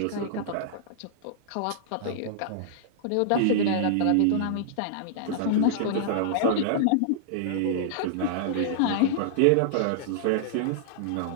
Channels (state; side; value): different; both; correlation -0.02